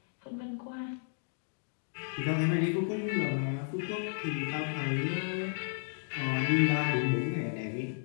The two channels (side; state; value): right; silent; digital silence